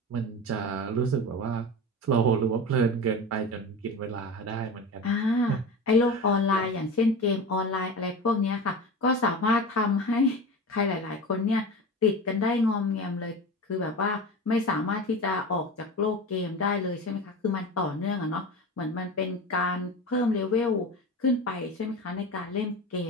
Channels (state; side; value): normal; both; correlation 0.29